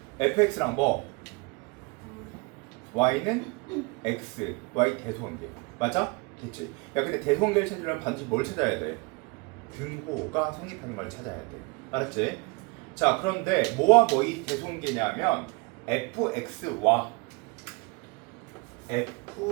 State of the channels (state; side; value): quieter; left; 27.9 dB